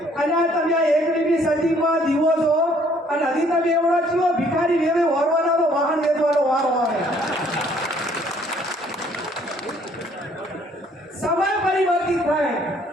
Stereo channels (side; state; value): both; normal; correlation 0.62